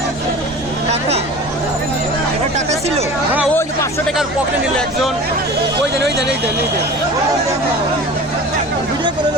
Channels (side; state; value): both; normal; correlation 0.38